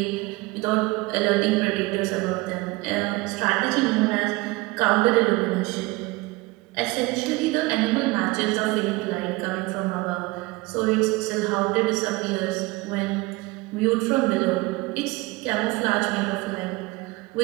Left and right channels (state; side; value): quieter; left; 22.5 dB